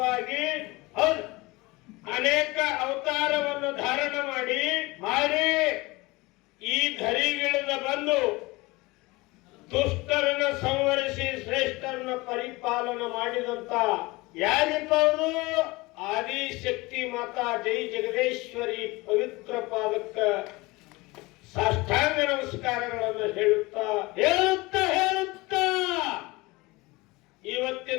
ಹೌದು, ಅನೇಕ ಅವತಾರವನ್ನು ಧಾರಣ ಮಾಡಿ ಈ ಧರಿಗಿಳಿದ ಬಂದು ದುಷ್ಟರನ್ನು ಸಂವರಿಸಿ ಶ್ರೇಷ್ಠರನ್ನು ಪರಿಪಾಲನ ಮಾಡಿದಂತ ಯಾರಿಪ್ಪ ಅವರು ಆದಿಶಕ್ತಿ ಮಾತಾ ಜೈ ಜಗದೇಶ್ವರಿ ಪವಿತ್ರ ಪಾದಕ್ಕ ಸಾಷ್ಟಾಂಗ ನಮಸ್ಕಾರಗಳನ್ನು ಹೇಳುತ್ತಾ ಹೇಳುತ್ತಾ ಹೇಳುತ್ತಾ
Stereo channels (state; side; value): quieter; right; 22.6 dB